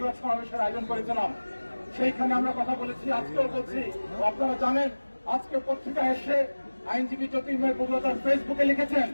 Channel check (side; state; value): both; inverted; correlation -1.00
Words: সমাবেশের আয়োজন করেছিলাম। সেইখানে আমরা কথা বলেছি, আজকেও বলছি। আপনারা জানেন, আজকে পত্রিকায় এসে আইনজীবী জ্যোতির্ময় বগুড়া তার ফেসবুকে লিখেছেন,